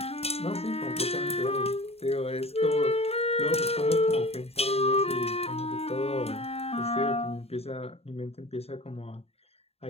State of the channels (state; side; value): late; right; 0.29 ms